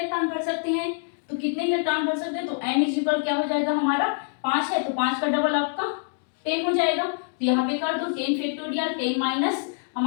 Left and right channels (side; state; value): right; silent; 61 dB below the other